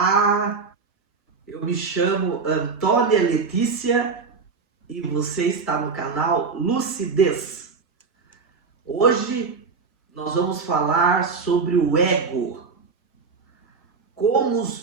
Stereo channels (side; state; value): left; quieter; 4.9 dB